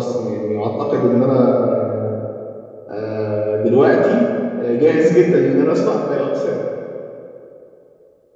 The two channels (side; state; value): both; identical; correlation 1.00